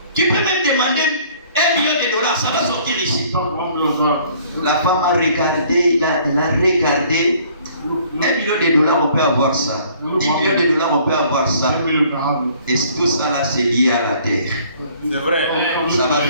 tu peux même demander $1 million, ça va sortir ici. La femme a regardé, il a regardé. $1 million, on peut avoir ça. $10 millions, on peut avoir ça. Et tout ça là, c'est lié à la terre. C'est vrai. Ça va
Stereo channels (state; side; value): inverted; both; correlation -0.57